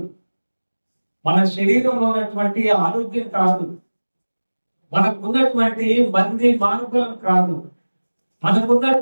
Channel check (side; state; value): both; inverted; correlation -1.00